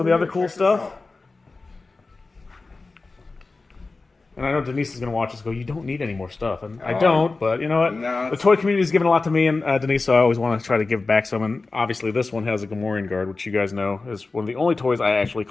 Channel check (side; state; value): right; quieter; 3.7 dB